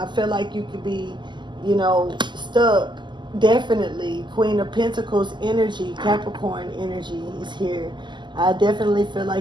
feel like you could be, stuck. Definitely Queen of Pentacles energy, Capricorn energy is here. I definitely feel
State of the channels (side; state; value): left; late; 0.22 ms